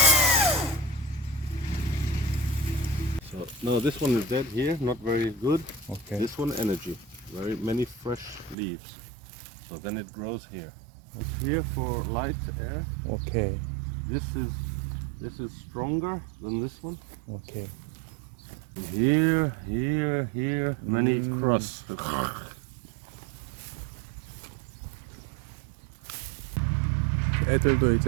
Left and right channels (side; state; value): left; drops out; at 8.6 s